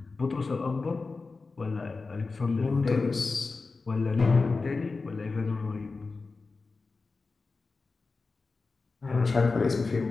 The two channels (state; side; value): quieter; right; 4.0 dB